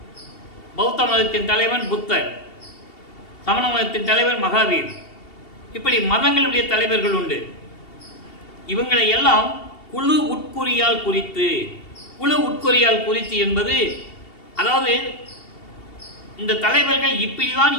பௌத்த மதத்தின் தலைவன் புத்தர், சமண மதத்தின் தலைவர் மகாவீர், இப்படி மதங்களுடைய தலைவர்கள் உண்டு. இவங்களை எல்லாம் குழு உட்குறியால் குறித்து என்பது, அதாவது இந்த தலைவர்கள் இப்படிதான்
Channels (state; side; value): late; right; 2.7 ms